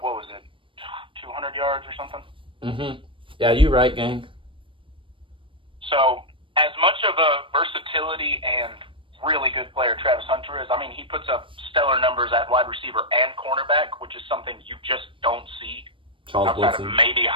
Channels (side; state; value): left; late; 0.25 ms